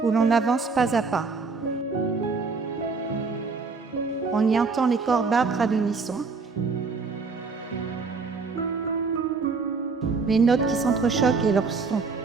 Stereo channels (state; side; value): quieter; left; 4.5 dB